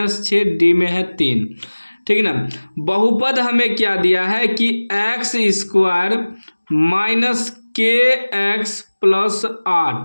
डी में है 3। ठीक है ना। बहुपद हमें क्या दिया है कि एक्स स्क्वायर माइनस के एक्स प्लस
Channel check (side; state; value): both; inverted; correlation -1.00